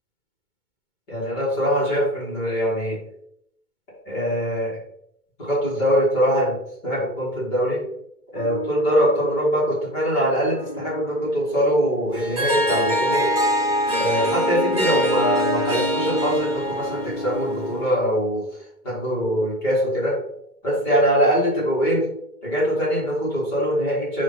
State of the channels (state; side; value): late; right; 2.2 ms